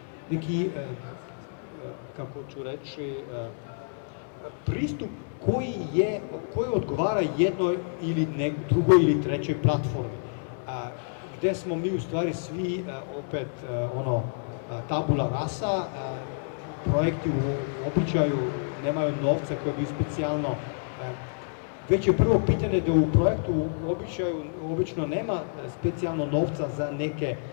neki kako ću reći, pristup koji odgovara jednoj ili drugoj ili trećoj platformi. Gde smo mi u stvari svi, opet, tabula rasa, projekti u običaju nemaju novca koji bi specijalno. Već je prvo pitanje da u projektu obično nema specijalno novca za neke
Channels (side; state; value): right; silent; digital silence